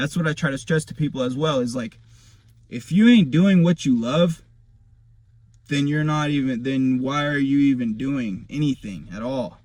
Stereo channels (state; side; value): identical; both; correlation 1.00